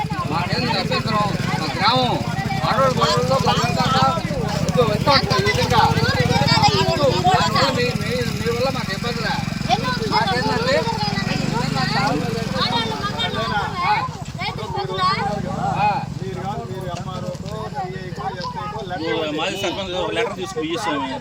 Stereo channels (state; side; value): identical; both; correlation 1.00